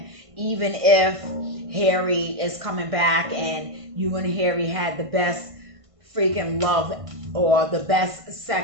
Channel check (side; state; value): left; late; 1.5 ms